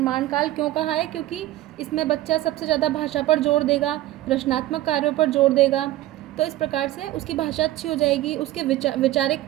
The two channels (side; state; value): left; quieter; 15.5 dB